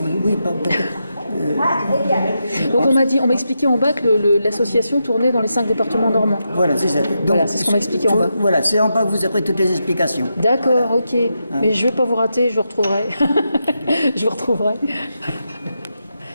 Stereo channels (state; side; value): inverted; both; correlation -0.86